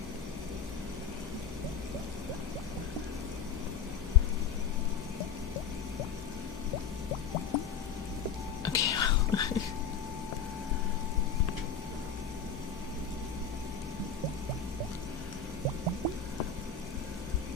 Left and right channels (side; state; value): right; quieter; 6.7 dB